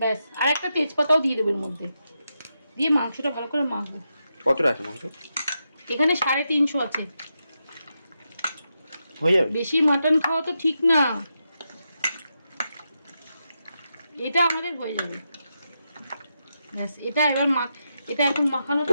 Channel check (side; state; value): both; inverted; correlation -0.86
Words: আর একটা তেজপাতাও দিয়ে দেবো এর মধ্যে, দিয়ে মাংসটা ভালো করে মাখবো। কতটা আছে মাংস? এখানে 350 আছে। হয়ে যাবে? বেশি মাটন খাওয়া তো ঠিক না, এটা আমাদের হয়ে যাবে, ব্যাস। এটা এবার এটা এখন মাখানো।